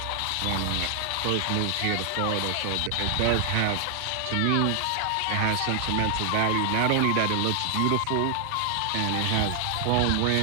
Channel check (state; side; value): different; both; correlation 0.00